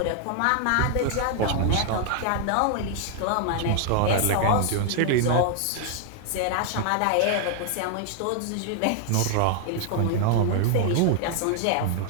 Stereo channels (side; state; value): both; different; correlation 0.00